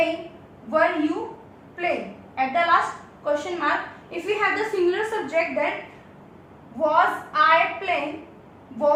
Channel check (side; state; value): both; identical; correlation 1.00